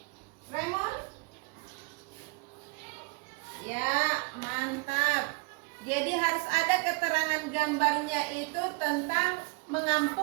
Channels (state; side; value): quieter; left; 30.4 dB